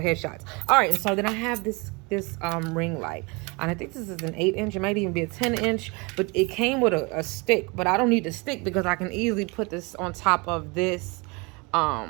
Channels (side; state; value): left; quieter; 28.2 dB